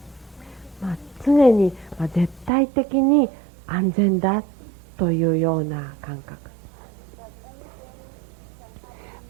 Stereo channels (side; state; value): left; drops out; at 2.5 s